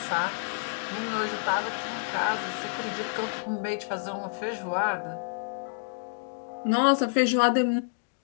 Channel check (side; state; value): right; silent; digital silence